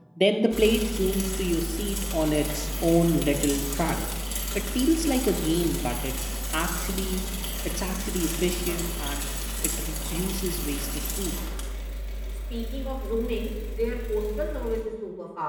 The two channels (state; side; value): identical; both; correlation 1.00